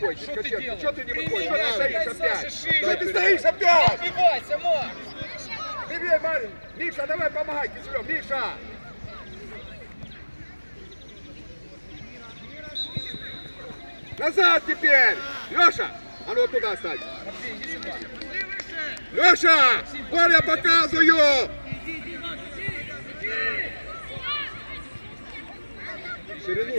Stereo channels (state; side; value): inverted; both; correlation -1.00